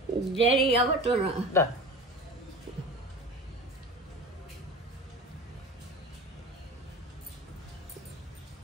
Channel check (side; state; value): both; normal; correlation 0.34